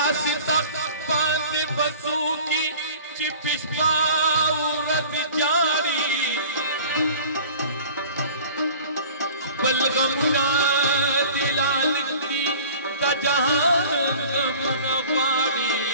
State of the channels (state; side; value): inverted; both; correlation -0.44